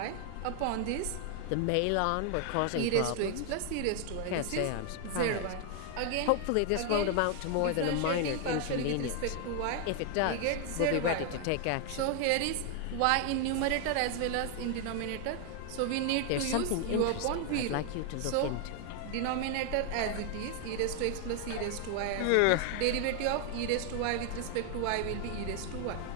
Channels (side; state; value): both; different; correlation 0.00